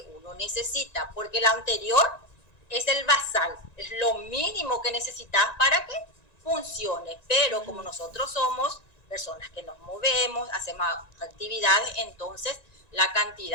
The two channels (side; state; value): right; late; 1.9 ms